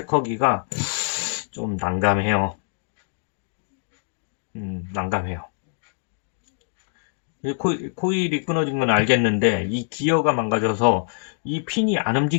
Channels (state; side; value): silent; right; digital silence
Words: 좀 난감해요. 난감해요. 코일이 끊어진 건 알겠는데 이 기어가 망가져서 이 핀이 안